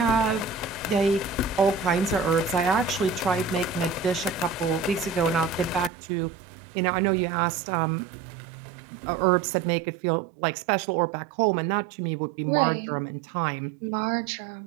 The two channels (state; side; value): drops out; left; at 5.9 s